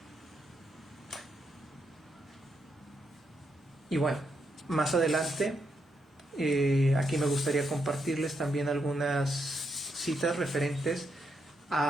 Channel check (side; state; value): both; normal; correlation 0.80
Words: Y bueno, más adelante, aquí me gustaría compartirles también algunas citas referentes